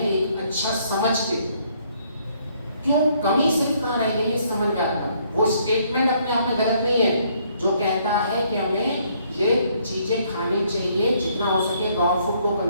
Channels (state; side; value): inverted; both; correlation -0.67